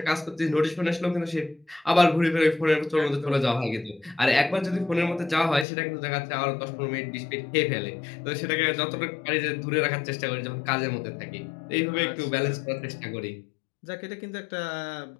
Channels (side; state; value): right; drops out; at 5.7 s